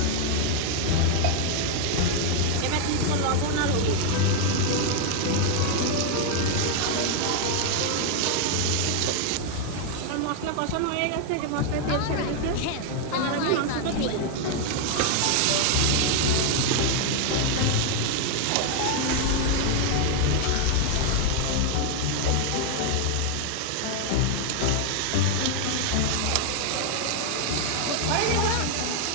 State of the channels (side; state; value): both; different; correlation 0.00